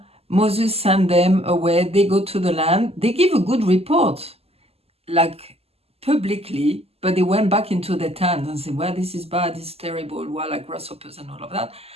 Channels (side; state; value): left; late; 0.29 ms